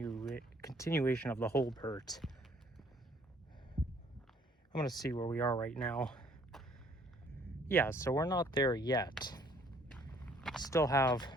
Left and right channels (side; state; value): both; normal; correlation 0.61